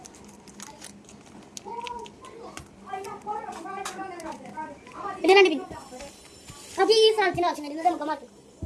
ഇത് രണ്ട് പിൻ. നമുക്ക് ഈ സാധനത്തിന് ആവശ്യം വരുന്നത് നമുക്ക് മാറ്റും.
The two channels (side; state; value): both; identical; correlation 1.00